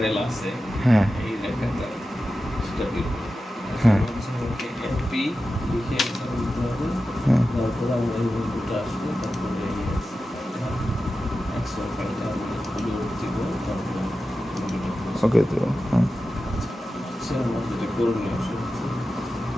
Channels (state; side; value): normal; both; correlation 0.93